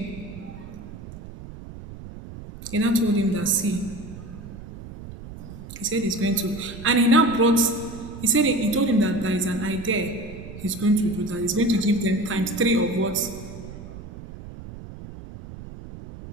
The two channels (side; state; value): right; noise; rumble, 13 dB below the sound